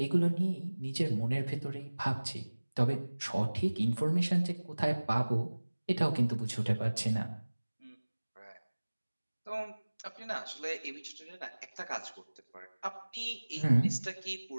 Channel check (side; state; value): both; inverted; correlation -1.00